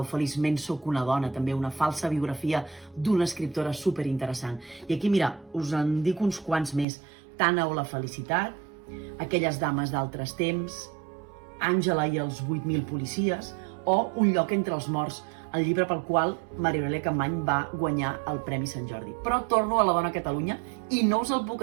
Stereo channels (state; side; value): drops out; left; at 6.9 s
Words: Feliçment sóc una dona, també una falsa biografia d'una escriptora superinteressant. I aquí, mira, us en dic uns quants més. Tana o la felicitat, Aquelles dames d'altres temps, Àngela i els 8.000 policies, o Un lloc entre els morts, el llibre pel qual Maria Aurèlia Capmany va guanyar el Premi Sant Jordi. Però torno a La dona a Catalunya i no us el